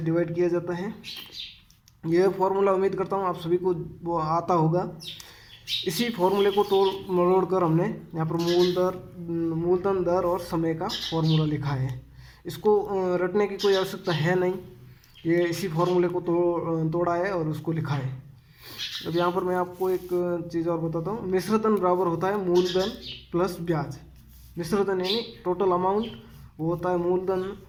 डिवाइड किया जाता है। यह फॉर्मूला उम्मीद करता हूँ आप सभी को वो आता होगा। इसी फॉर्मूले को तोड़ मरोड़ कर हमने यहाँ पर मूलधन दर और समय का फॉर्मूला लिखा है। इसको रटने की कोई आवश्यकता है नहीं, ये इसी फॉर्मूले को तोड़ा है और उसको लिखा है। अब यहाँ पर मैं आपको एक चीज़ और बताता हूँ। मिश्रधन बराबर होता है मूलधन प्लस ब्याज। मिश्रधन यानी टोटल अमाउंट, वो होता है मूलधन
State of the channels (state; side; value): identical; both; correlation 1.00